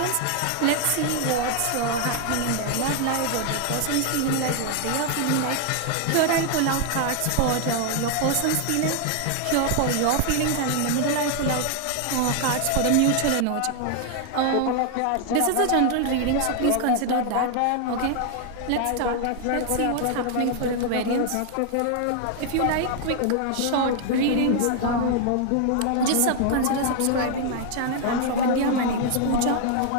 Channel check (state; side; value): different; both; correlation 0.00